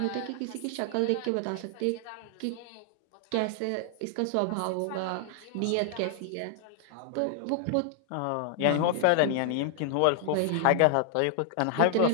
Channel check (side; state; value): both; different; correlation 0.00